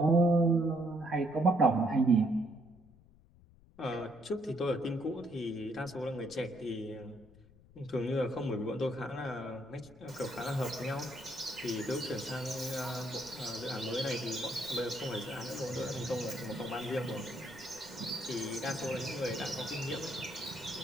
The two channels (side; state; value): left; noise; rumble, 25 dB below the sound